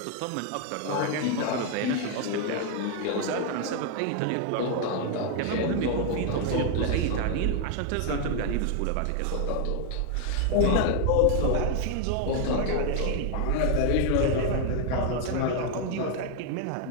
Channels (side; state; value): both; different; correlation 0.00